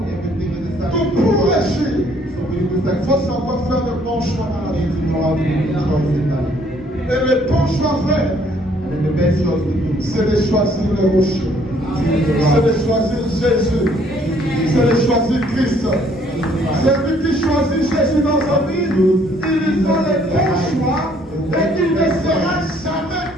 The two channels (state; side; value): normal; both; correlation 0.63